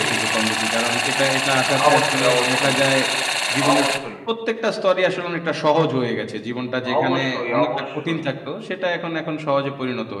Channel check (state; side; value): identical; both; correlation 1.00